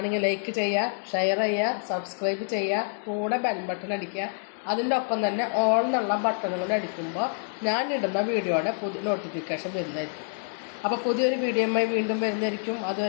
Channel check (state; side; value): silent; right; digital silence